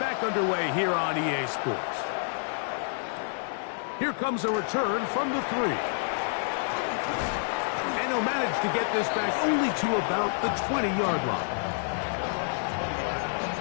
underway here on EA Sports. Here comes a return from the 3. And he'll manage to get this back only to about the 20-yard line.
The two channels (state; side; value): silent; right; digital silence